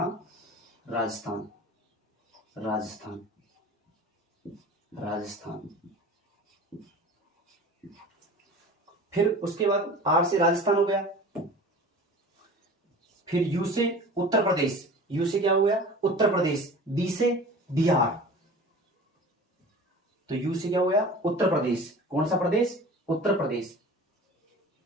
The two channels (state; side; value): normal; both; correlation 0.40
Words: राजस्थान, राजस्थान, राजस्थान। फिर उसके बाद आर से राजस्थान हो गया। फिर यू से उत्तर प्रदेश, यू से क्या हो गया? उत्तर प्रदेश। बी से बिहार, तो यू से क्या हो गया? उत्तर प्रदेश। कौन सा प्रदेश? उत्तर प्रदेश,